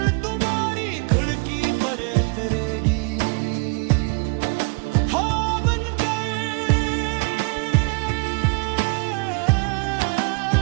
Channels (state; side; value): quieter; left; 33.6 dB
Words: तुम्हारी खिड़की पर उतरेगी।